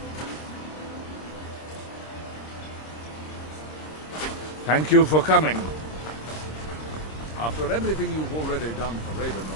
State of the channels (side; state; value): right; late; 26 ms